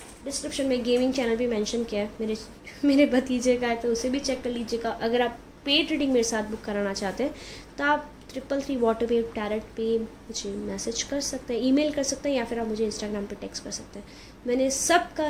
डिस्क्रिप्शन में गेमिंग चैनल भी मेंशन किया है मेरे भतीजे का है, तो उसे भी चेक कर लीजिएगा. अगर आप पेड रीडिंग मेरे साथ बुक कराना चाहते हैं तो आप 333 वाटर वेव टैरेट पे मुझे मैसेज कर सकते हैं, ईमेल कर सकते हैं, या फिर आप मुझे इंस्टाग्राम पे टेक्स्ट कर सकते हैं. मैंने सबका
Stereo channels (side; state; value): both; identical; correlation 1.00